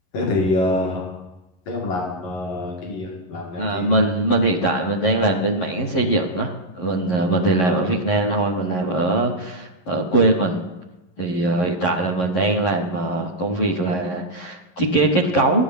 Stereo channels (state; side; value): late; right; 11 ms